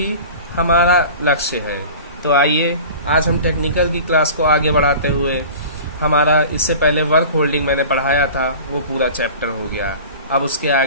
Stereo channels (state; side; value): inverted; both; correlation -0.38